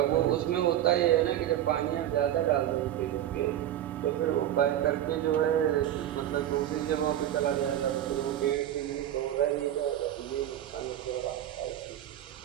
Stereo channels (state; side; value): quieter; left; 11.8 dB